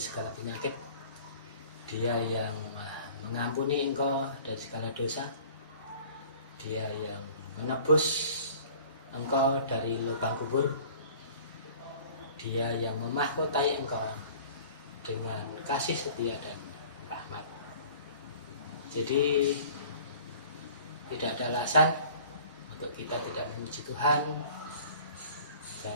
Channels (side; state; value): both; inverted; correlation -0.48